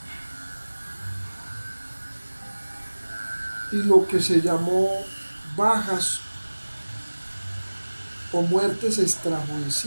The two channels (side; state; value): both; inverted; correlation -1.00